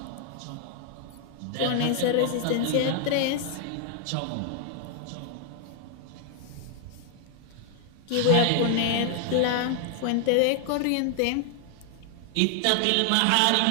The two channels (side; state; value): both; different; correlation 0.00